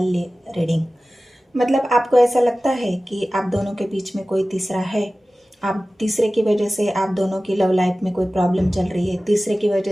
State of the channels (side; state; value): both; normal; correlation 0.96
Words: रीडिंग। मतलब आपको ऐसा लगता है कि आप दोनों के बीच में कोई तीसरा है। आप तीसरे की वजह से आप दोनों की लव लाइफ में कोई प्रॉब्लम चल रही है। तीसरे की